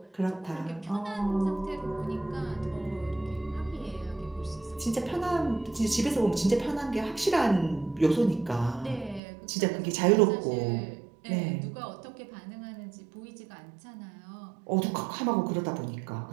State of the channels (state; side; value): drops out; left; at 9.2 s